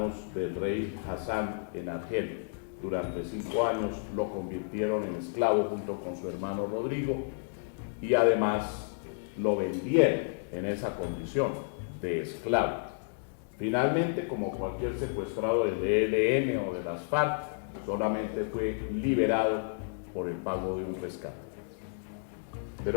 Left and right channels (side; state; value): right; silent; digital silence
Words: del rey Hassan en Argel. Durante 5 años lo convirtieron en esclavo junto con su hermano Rodrigo y además lo vendieron en esa condición de esclavo. Finalmente, como cualquier secuestrado del ELN o de las FARC, solamente fue liberado por el pago de un rescate.